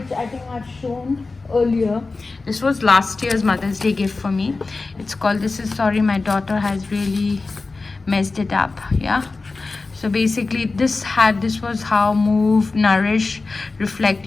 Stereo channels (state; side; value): quieter; right; 3.7 dB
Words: I think I've shown earlier. This was last year's Mother's Day gift for me. It's called This Is Sorry, My Daughter Has Really Messed It Up. Yeah. So basically this was how move, nourish, reflect,